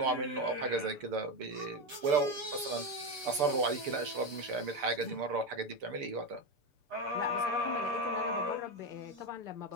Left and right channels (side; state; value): left; late; 6.8 ms